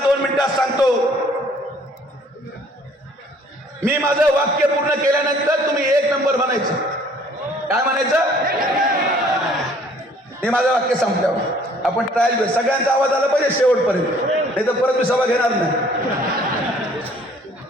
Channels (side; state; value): both; normal; correlation 0.57